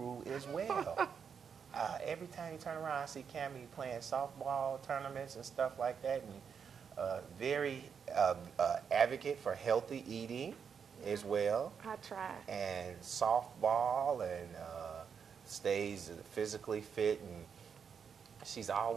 as well. Every time you turn around, I see Cammie playing softball tournaments and stuff like that, and very advocate for healthy eating as well. I try. And softball, and stays physically fit, and she's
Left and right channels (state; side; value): quieter; left; 6.8 dB